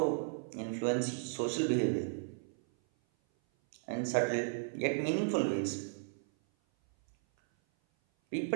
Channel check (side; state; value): left; silent; 55 dB below the other